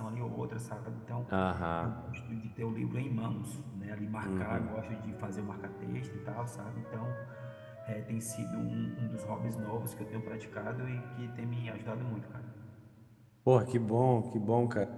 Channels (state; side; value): identical; both; correlation 1.00